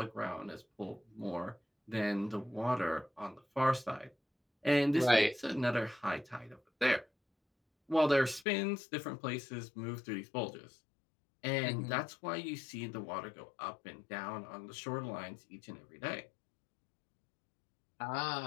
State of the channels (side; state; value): right; drops out; at 8.5 s